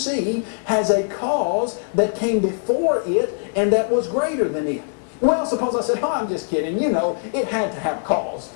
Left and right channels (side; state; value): right; silent; 64 dB below the other